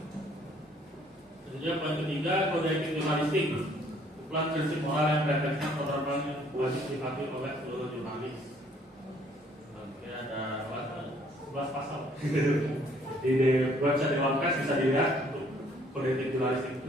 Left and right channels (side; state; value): both; normal; correlation 0.62